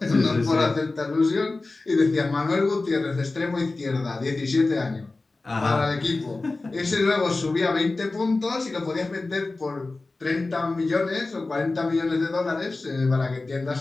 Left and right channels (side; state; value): right; quieter; 3.4 dB